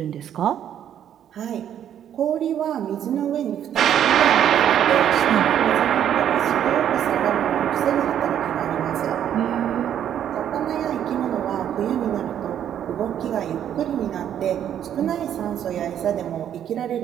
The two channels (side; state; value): left; quieter; 10.0 dB